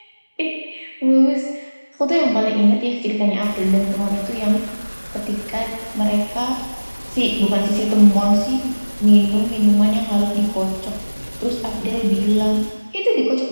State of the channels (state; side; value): inverted; both; correlation -1.00